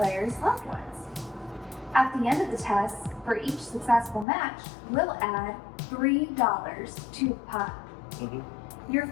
loved ones. At the end of the test, for each successful match, we'll add $3 to the pot. Your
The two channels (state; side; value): drops out; right; at 4.2 s